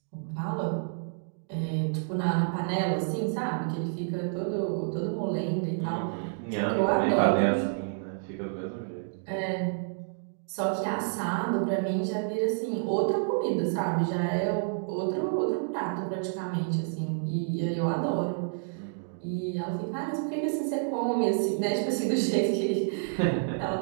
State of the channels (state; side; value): silent; left; digital silence